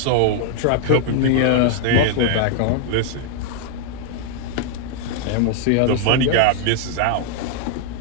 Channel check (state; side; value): different; both; correlation 0.00